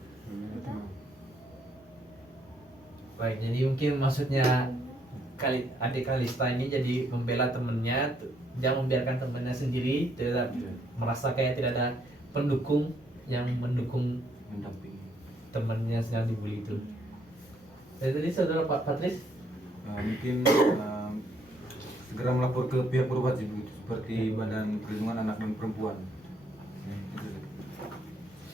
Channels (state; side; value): normal; both; correlation 0.70